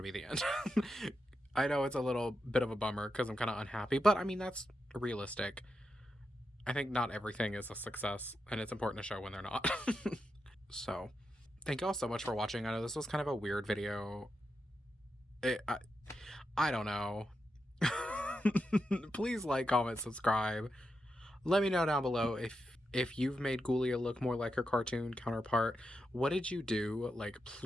to be the end. I know it's a little bit of a bummer because I'm kind of unhappy, but I mean, that's realistic. I think not everything is a success, and it's important to show when they're not. So, thank you all so much for watching. I know this was kind of a weird video. I don't know. Please like, comment, subscribe. Let me know down below if you've made Ghoulia look more like her cartoon counterpart. What did you do? Like,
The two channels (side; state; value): both; normal; correlation 0.87